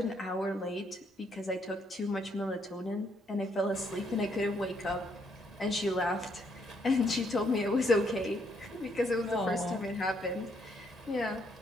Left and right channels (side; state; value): both; normal; correlation 0.72